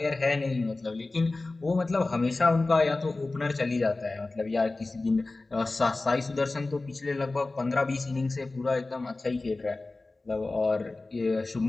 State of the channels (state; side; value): quieter; right; 3.2 dB